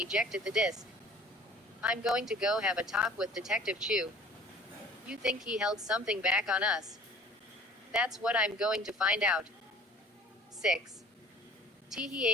the disk. I'm going to go have a talk with Detective Chu. You think he held something back on us? That's what I'm going to find out. 6.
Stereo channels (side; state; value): both; normal; correlation 0.48